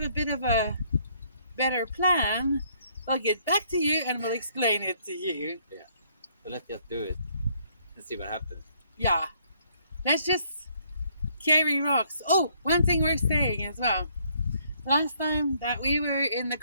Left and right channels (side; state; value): both; inverted; correlation -0.67